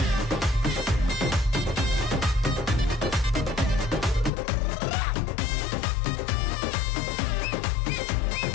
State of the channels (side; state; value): right; drops out; at 4.3 s